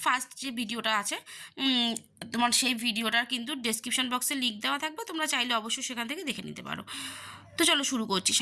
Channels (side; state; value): both; identical; correlation 1.00